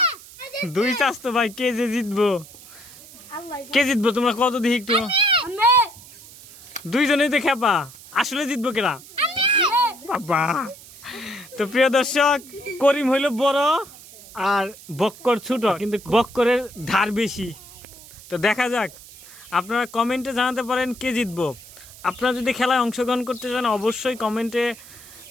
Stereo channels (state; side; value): noise; right; hiss, 19 dB below the sound